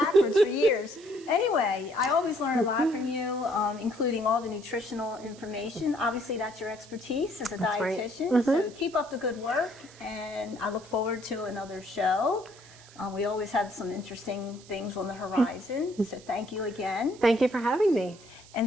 for years. Anyway, I always learn a lot from you, including all the nutritional information. Obviously, that's your expertise as a dietitian. Right. So keep up the good work, and I look forward to another show. We always have some interesting things on the horizon. So thank you again. Thank you for having me.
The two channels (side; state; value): right; noise; hiss, 22 dB below the sound